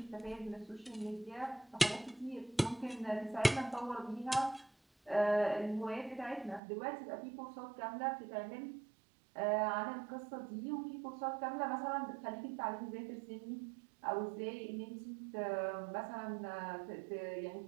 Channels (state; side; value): drops out; left; at 6.6 s